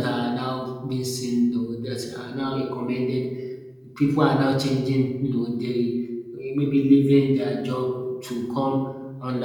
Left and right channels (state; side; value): identical; both; correlation 1.00